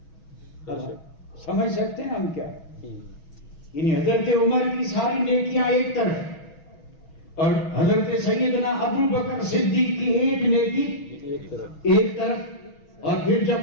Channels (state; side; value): late; right; 6.2 ms